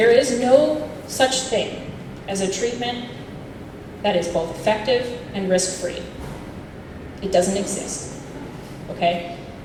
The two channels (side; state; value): both; identical; correlation 1.00